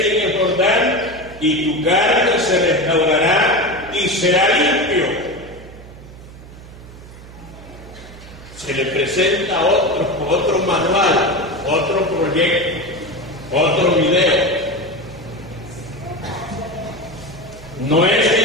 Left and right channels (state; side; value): noise; right; hum, 17 dB below the sound